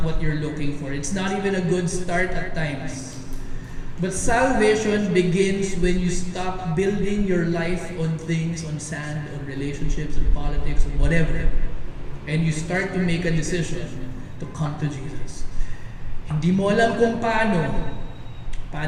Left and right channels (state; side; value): identical; both; correlation 1.00